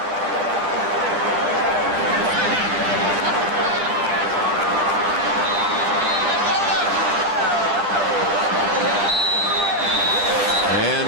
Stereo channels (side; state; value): left; late; 10 ms